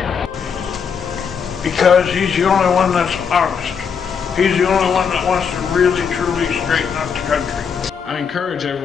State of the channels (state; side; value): quieter; right; 6.5 dB